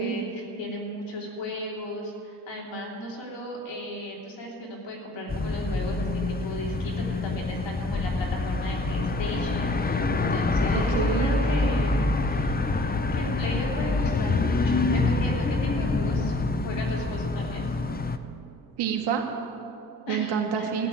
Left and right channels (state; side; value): normal; both; correlation 0.53